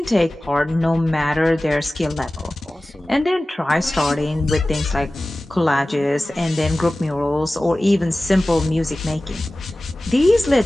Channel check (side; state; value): both; normal; correlation 0.97